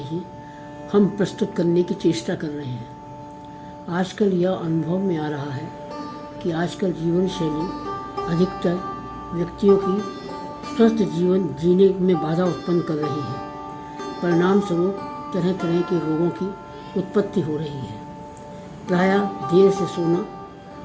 हम प्रस्तुत करने की चेष्टा कर रहे हैं। आजकल यह अनुभव में आ रहा है कि आजकल जीवन शैली अधिकतर व्यक्तियों की स्वस्थ जीवन जीने में बाधा उत्पन्न कर रही है। परिणाम स्वरूप तरह तरह के रोगों की उत्पत्ति हो रही है। प्रायः देर से सोना,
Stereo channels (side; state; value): both; identical; correlation 1.00